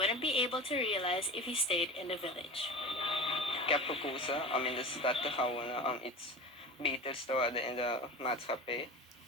be able to realize if he stayed in the village. Ik heb gekozen om in de stad te gaan wonen om iets beters te worden in de maatschappij.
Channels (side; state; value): both; normal; correlation 0.31